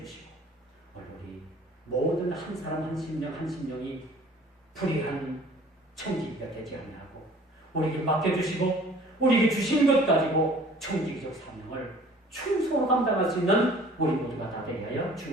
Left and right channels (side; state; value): both; normal; correlation 0.50